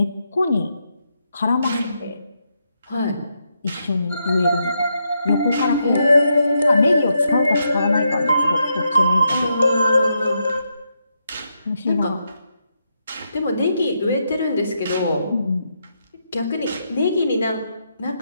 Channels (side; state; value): both; inverted; correlation -0.82